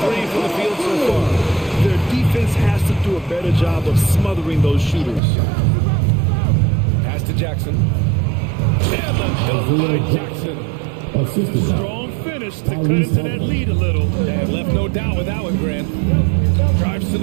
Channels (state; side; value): drops out; left; at 5.2 s